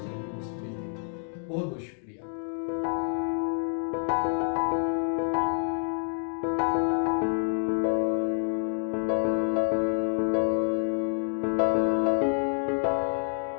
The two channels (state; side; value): silent; right; digital silence